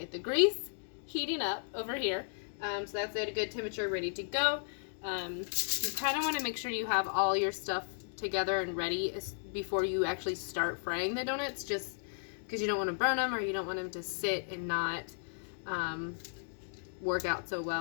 The grease heating up over here. So that's at a good temperature, ready to go. You kind of want to make sure you have all your stuff together and ready before you actually start frying the donuts, just because you don't want to burn them or you don't want them to sit and not work out so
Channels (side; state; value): right; silent; digital silence